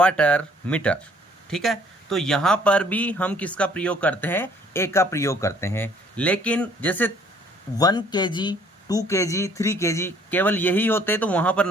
मीटर, ठीक है। तो यहाँ पर भी हम किसका प्रयोग करते हैं, ए का प्रयोग करते हैं। लेकिन जैसे 1 kg, 2 kg, 3 kg केवल यही होते तो वहाँ पर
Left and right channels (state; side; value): normal; both; correlation 0.59